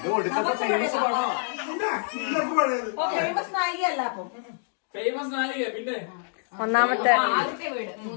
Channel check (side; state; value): right; silent; digital silence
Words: ഫേമസ് നായികയല്ല. അപ്പം ഫേമസ് നായിക പിന്നെ ഒന്നാമത്തെ